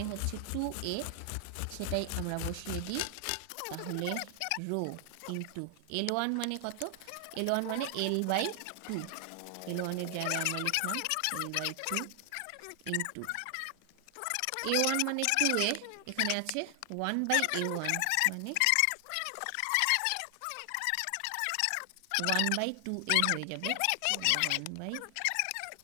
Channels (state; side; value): different; both; correlation 0.00